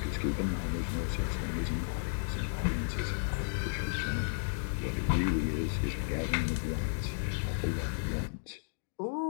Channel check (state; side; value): silent; right; digital silence